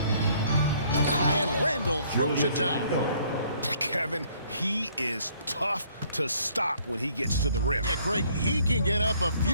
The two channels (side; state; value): both; inverted; correlation -0.62